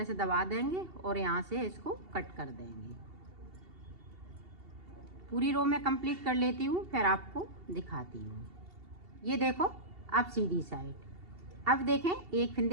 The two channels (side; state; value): left; late; 2.7 ms